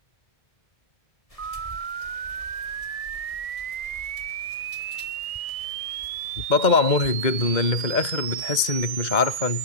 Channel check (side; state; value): right; late; 2.0 ms